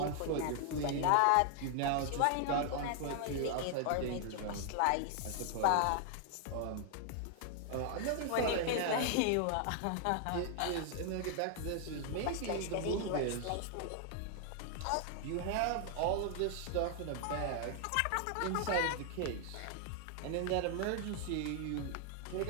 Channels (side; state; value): both; different; correlation 0.00